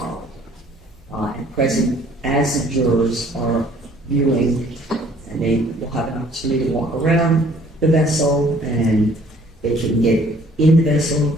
it. And present as the jurors are viewing, and they will have an opportunity to walk around the vessel, and they can get in the vessel,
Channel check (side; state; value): both; normal; correlation 0.58